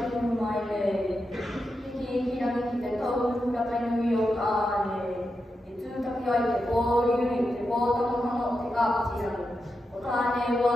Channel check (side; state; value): both; normal; correlation 0.88